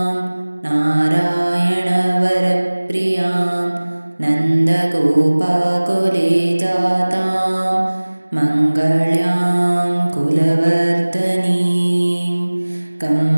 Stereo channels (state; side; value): inverted; both; correlation -1.00